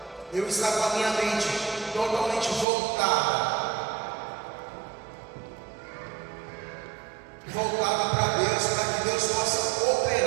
eu estar com a minha mente totalmente voltada para Deus, para que Deus possa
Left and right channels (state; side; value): drops out; left; at 2.7 s